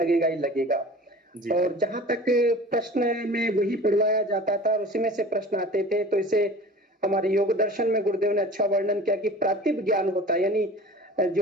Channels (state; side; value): normal; both; correlation 0.41